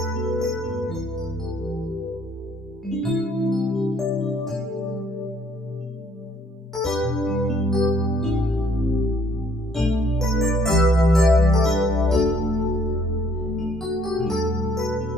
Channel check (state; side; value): normal; both; correlation 0.63